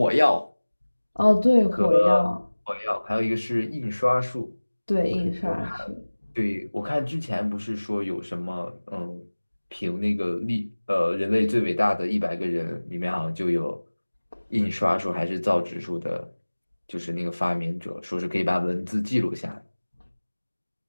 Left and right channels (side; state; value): both; inverted; correlation -1.00